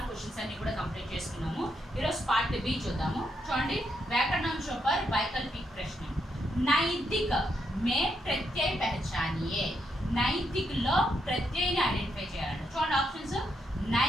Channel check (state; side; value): normal; both; correlation 0.79